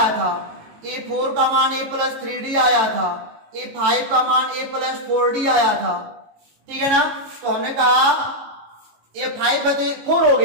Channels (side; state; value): left; late; 18 ms